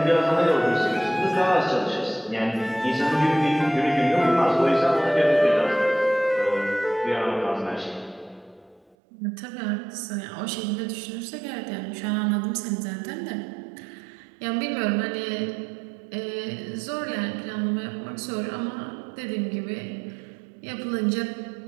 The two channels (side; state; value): left; drops out; at 9.0 s